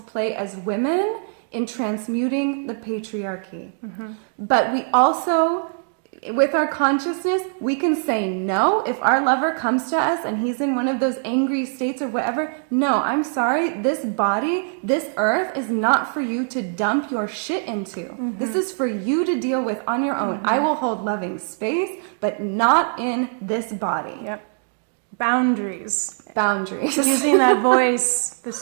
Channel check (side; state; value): left; silent; 62 dB below the other